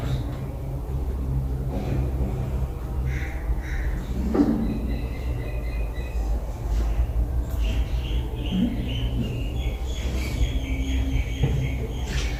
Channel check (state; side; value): identical; both; correlation 1.00